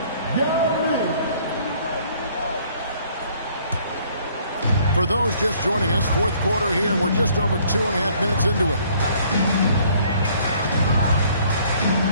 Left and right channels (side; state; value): both; inverted; correlation -0.60